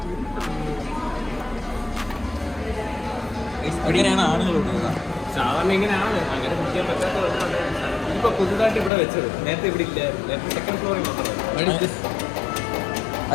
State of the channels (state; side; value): drops out; right; at 8.9 s